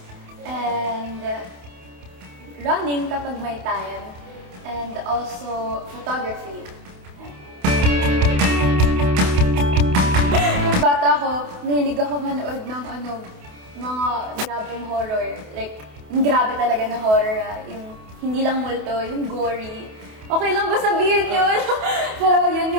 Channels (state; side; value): late; left; 28 ms